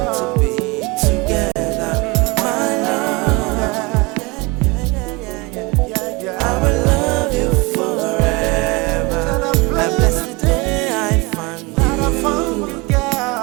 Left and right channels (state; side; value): quieter; left; 25.9 dB